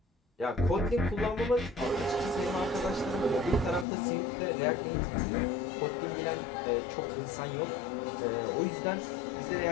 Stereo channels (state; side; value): drops out; right; at 3.9 s